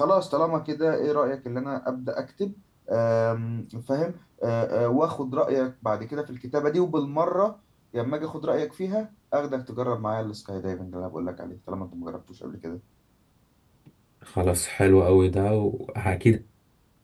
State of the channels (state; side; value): identical; both; correlation 1.00